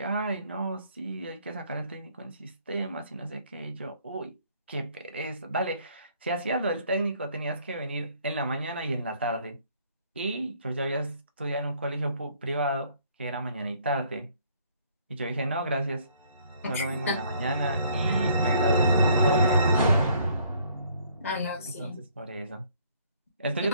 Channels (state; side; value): inverted; both; correlation -0.62